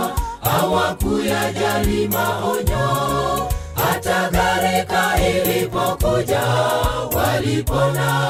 hawakuyajali maonyo. Hata gharika ilipokuja,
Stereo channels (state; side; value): identical; both; correlation 1.00